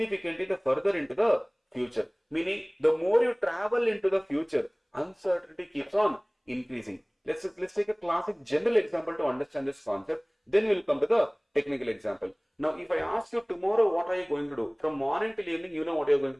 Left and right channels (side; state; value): both; identical; correlation 1.00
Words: the further into the future. Meaning, the more you travel into the future, uncertainty keeps on increasing. Let's take a classic general example to understand this concept. Then we will come to the technical example. Now, if I ask you tomorrow, what are you going to do? From morning till evening, you know what you are going